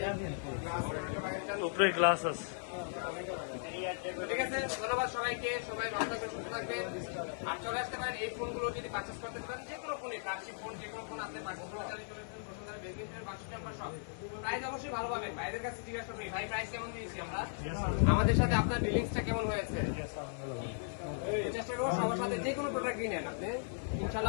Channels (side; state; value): right; silent; 53 dB below the other